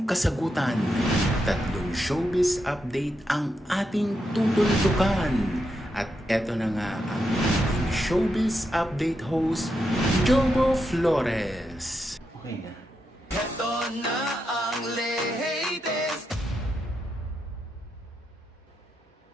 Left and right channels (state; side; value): normal; both; correlation 0.84